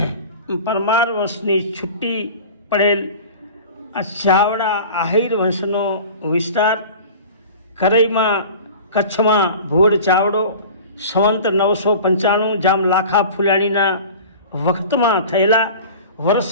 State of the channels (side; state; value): both; inverted; correlation -0.39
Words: વંશની છૂટી પડેલ ચાવડા આહિર વંશનો વિસ્તાર કરઈમાં કચ્છમાં ભુવડ ચાવડો સંવંત 995 જામ લાખા ફુલાણીના વખતમાં થયેલા વર્ષ